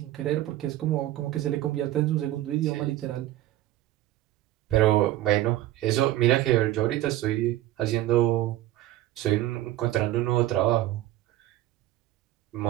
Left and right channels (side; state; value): left; quieter; 14.8 dB